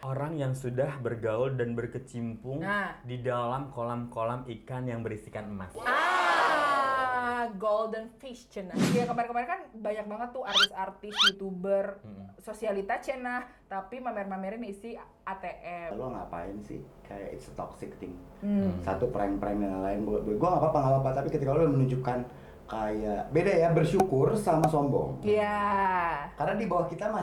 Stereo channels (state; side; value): identical; both; correlation 1.00